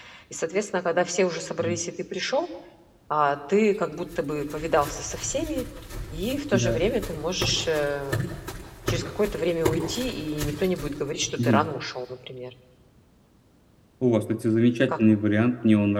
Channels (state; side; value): identical; both; correlation 1.00